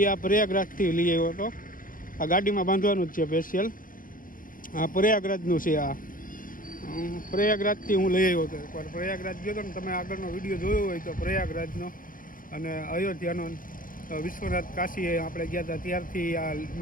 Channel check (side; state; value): right; late; 0.40 ms